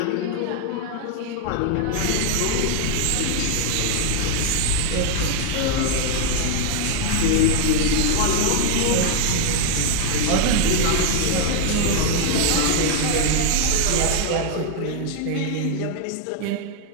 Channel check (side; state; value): both; different; correlation 0.00